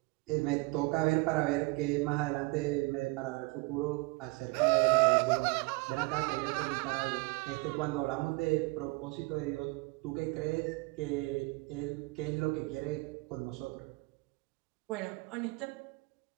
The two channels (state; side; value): quieter; left; 25.6 dB